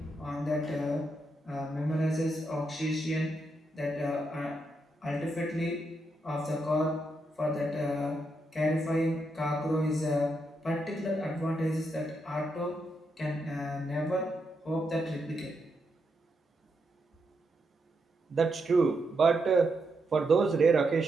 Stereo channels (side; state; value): both; normal; correlation 0.82